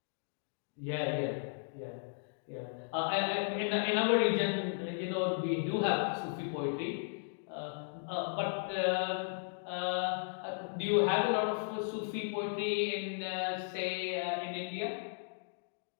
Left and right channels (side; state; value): right; silent; digital silence